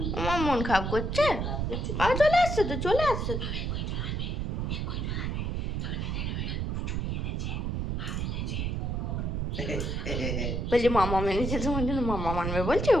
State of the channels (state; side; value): noise; right; rumble, 1 dB below the sound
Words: আমার মন খারাপ করছে? বাবা চলে আসছে তো, চলে আসছে তো। বলছি মামা মেনেছে তোমার জন্য, মামা মানবে বলছে।